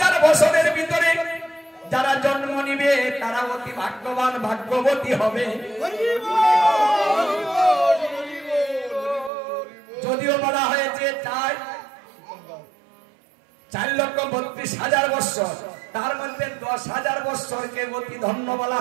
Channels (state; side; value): drops out; left; at 9.3 s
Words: বছরের ভিতরে যারা জন্ম নিবে তারা অতি ভাগ্যবান, ভাগ্যবতী হবে। যদিও বলা হয়েছে 4,32,000 বৎসর, তার মধ্যে 10,000 বৎসরকে অতি ধন্য বলা